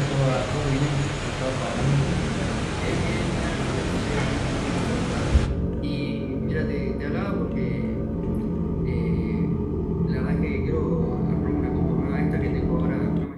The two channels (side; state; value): both; identical; correlation 1.00